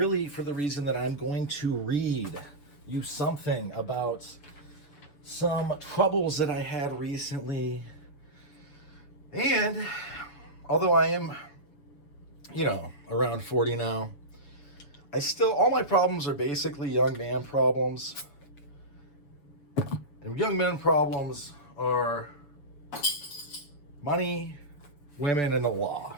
for the reason that I'm going to read you something about some troubles that I had recently. And although I am, around 40 now, all my problems are basically young man problems. And young men problems are money, women, and the law.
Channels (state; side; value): late; right; 6.9 ms